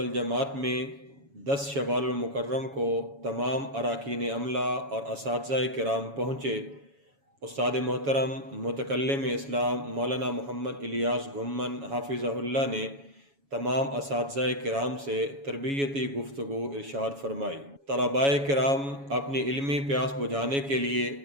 میں 10 شوال المکرم کو تمام اراکین عملہ اور اساتذہ کرام پہنچے۔ استاد محترم متکلم اسلام مولانا محمد الیاس گھمن حافظہ اللہ نے تمام اساتذہ کرام سے تربیتی گفتگو ارشاد فرمائی۔ طلباء کرام اپنی علمی پیاس بجھانے کے لیے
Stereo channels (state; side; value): late; left; 7.2 ms